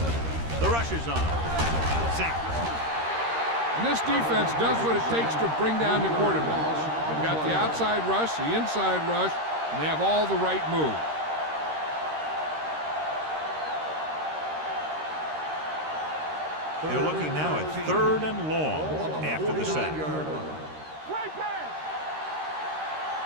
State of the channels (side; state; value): left; late; 13 ms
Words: The rush is on. Sack. And this defense does what it takes to bring down the quarterbacks. They've got the outside rush, the inside rush, and they have all the right moves. They're looking now at 3rd and long after the sack. Great pass.